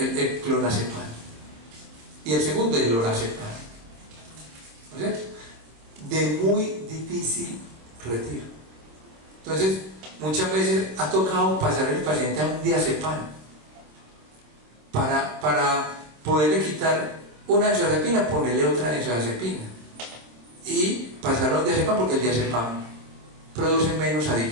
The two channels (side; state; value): left; late; 26 ms